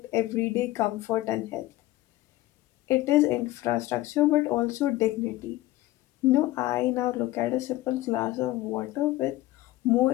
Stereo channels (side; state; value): right; quieter; 16.7 dB